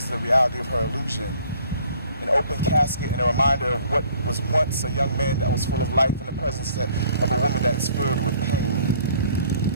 is the reality of her illusion. An open casket and a reminder of what was once a young man that was full of life in the presence of a woman that's filled with pain.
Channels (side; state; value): both; inverted; correlation -0.57